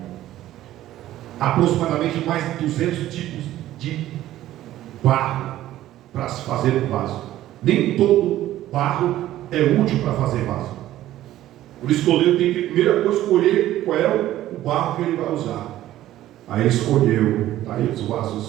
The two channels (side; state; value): left; quieter; 13.9 dB